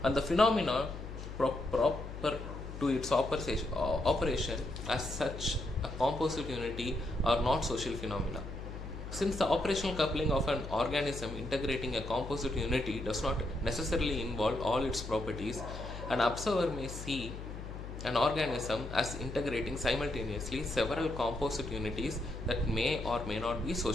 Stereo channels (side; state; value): left; noise; hum, 9 dB below the sound